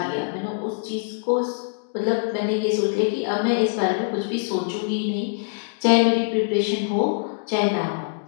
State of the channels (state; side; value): silent; right; digital silence